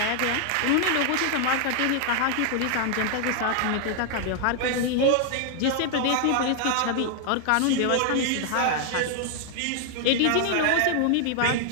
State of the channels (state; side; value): different; both; correlation 0.00